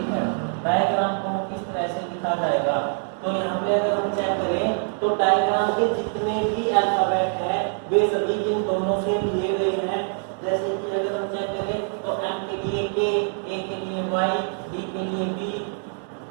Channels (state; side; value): silent; left; 59 dB below the other